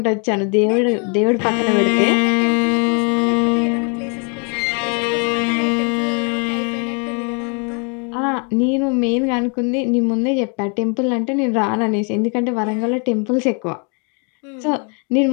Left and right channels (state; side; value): quieter; right; 37.9 dB